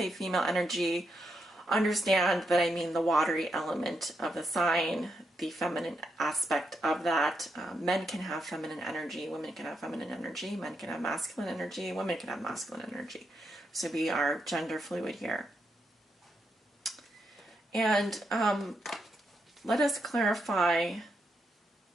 female energy, understand that I mean the watery element of the sign, the feminine aspect of that. Men can have feminine energy, women can have feminine energy, men can have masculine energy, women can have masculine energy. So we are gender fluid here. And let us clarify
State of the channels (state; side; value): normal; both; correlation 0.81